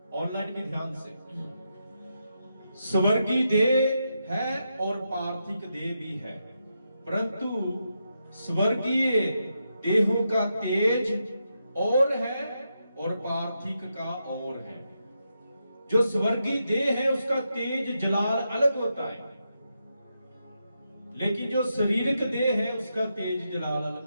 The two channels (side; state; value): both; inverted; correlation -0.84